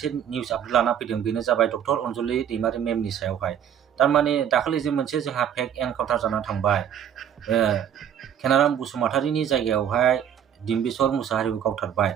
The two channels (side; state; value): left; quieter; 9.2 dB